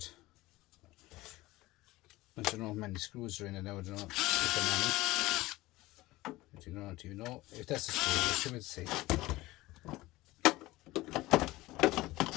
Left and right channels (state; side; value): quieter; right; 18.9 dB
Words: I don't know how many screws are in it now. I don't know if there are many. Do you know if that's a screw? I should say.